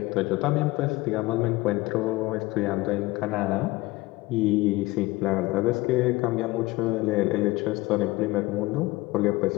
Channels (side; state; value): right; quieter; 20.5 dB